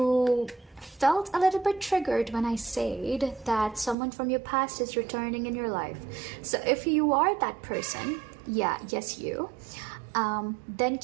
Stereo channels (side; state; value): left; drops out; at 4.0 s